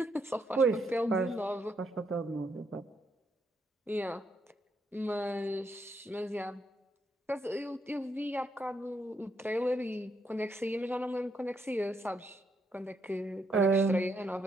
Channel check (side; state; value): both; normal; correlation 0.77